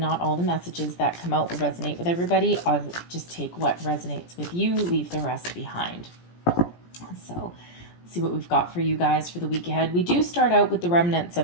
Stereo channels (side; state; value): right; late; 17 ms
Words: all the messages that come out will resonate with everybody. I'll just take what resonates with you, leave the rest behind. So see what we've got for you guys for the week ahead. We do start out with the remnants